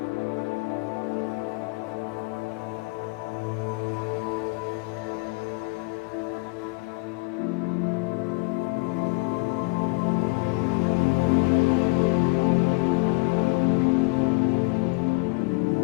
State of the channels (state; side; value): quieter; right; 28.2 dB